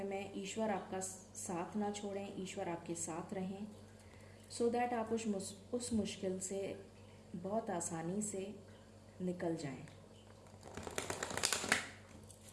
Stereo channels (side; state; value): both; identical; correlation 1.00